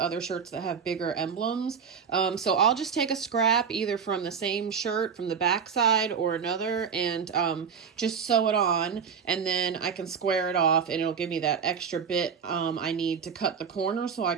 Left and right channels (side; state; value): left; quieter; 6.6 dB